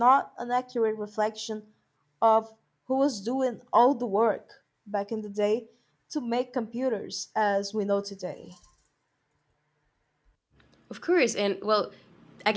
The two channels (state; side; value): identical; both; correlation 1.00